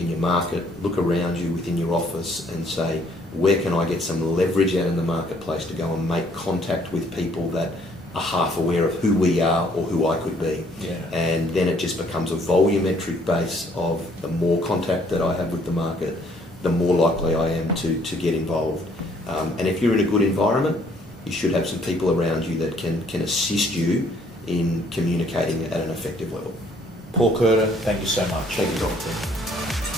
your market, look around you within your office, and say, where can I get some leverage out in the marketplace to go and make contact with people that are half aware of who we are or who I could be. And then it just becomes a volumetric base of the more contact that I have with the market, the more likely I am to get involved. And if you're in a good environment, you should have some people around you that can assist you in communicating at an effective level. Paul Curtin, thank you so much. Thank you, Doctor.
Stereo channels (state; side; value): normal; both; correlation 0.63